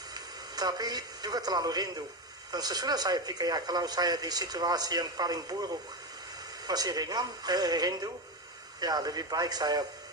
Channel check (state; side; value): normal; both; correlation 0.15